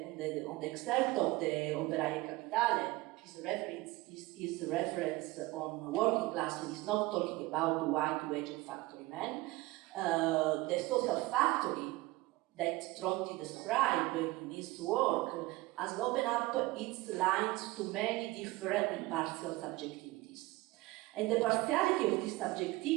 excerpt of the Operaie Capitale, his reference on working class is not talking about white-waged factory men. The social factory that Tronti described in his work has opened up its lines to many different and partial subjectivities. And the partiality of this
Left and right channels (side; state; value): left; quieter; 20.4 dB